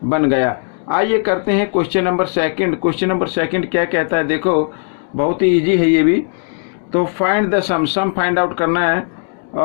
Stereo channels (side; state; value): right; silent; 57 dB below the other